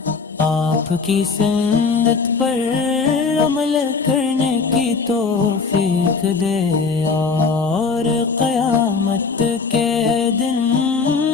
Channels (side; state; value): right; quieter; 4.8 dB